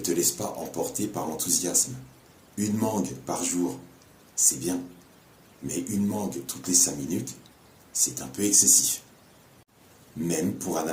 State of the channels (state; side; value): identical; both; correlation 1.00